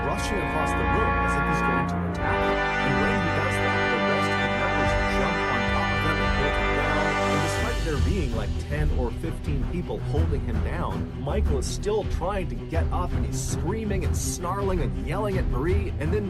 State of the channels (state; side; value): identical; both; correlation 1.00